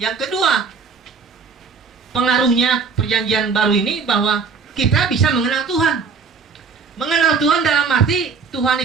yang kedua, pengaruhnya perjanjian baru ini bahwa kita bisa mengenal Tuhan. Mengenal Tuhan dalam arti Tuhan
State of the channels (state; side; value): quieter; left; 5.1 dB